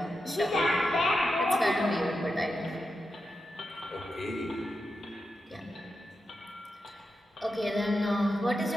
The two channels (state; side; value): normal; both; correlation 0.89